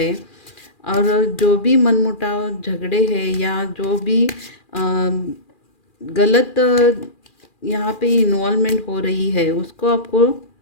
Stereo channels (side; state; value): right; late; 2.4 ms